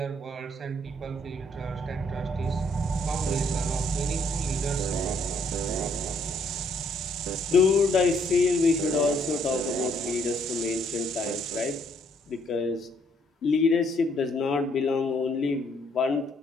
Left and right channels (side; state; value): both; normal; correlation 0.68